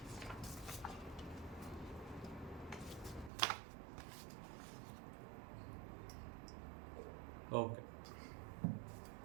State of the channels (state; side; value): drops out; left; at 3.3 s